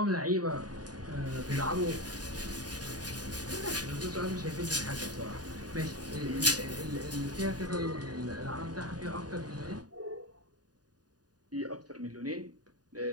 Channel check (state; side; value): late; left; 0.68 ms